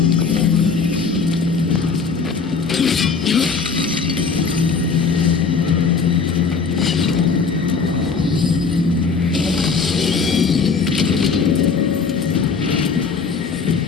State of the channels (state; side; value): quieter; right; 5.1 dB